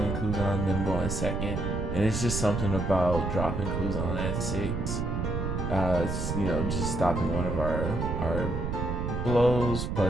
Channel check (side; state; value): right; noise; rumble, 2 dB below the sound